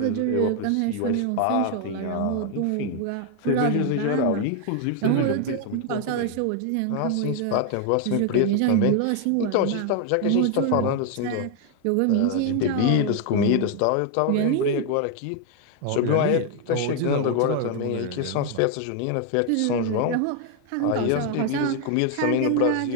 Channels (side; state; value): both; different; correlation 0.01